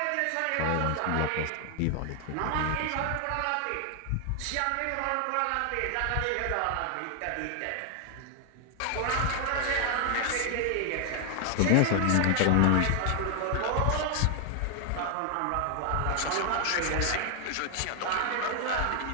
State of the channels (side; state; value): both; different; correlation 0.00